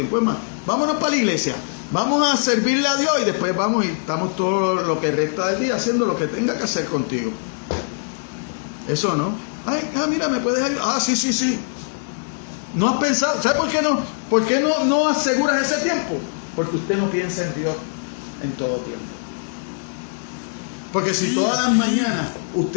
Es más, vámonos para la iglesia, vamos a servirle a Dios y después vamos y estamos todo lo que resta del día haciendo lo que tenga que hacer contigo. Eso no. Mira, ¿me puedes ayudar? Sí. No has pensado, ¿sabe por qué no? ¿Por qué no aseguras ese tiempo? Porque usted no piensa en Dios en todo tiempo. Porque si todas las mañanas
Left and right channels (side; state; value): right; silent; digital silence